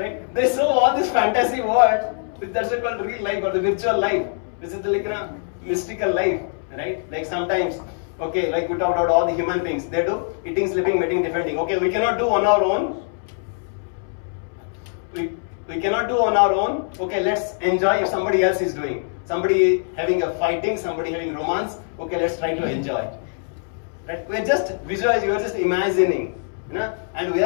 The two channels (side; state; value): right; silent; 64 dB below the other